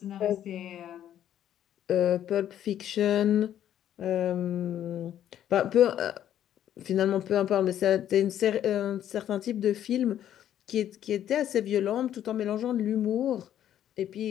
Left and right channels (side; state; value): right; quieter; 10.9 dB